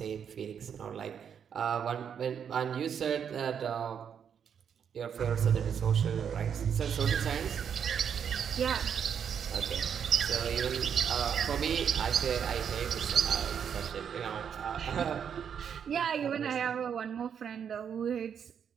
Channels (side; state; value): left; quieter; 7.8 dB